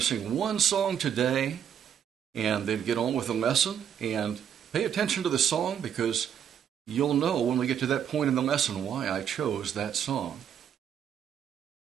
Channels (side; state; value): left; quieter; 8.8 dB